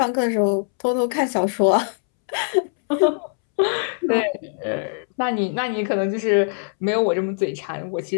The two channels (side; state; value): right; silent; 64 dB below the other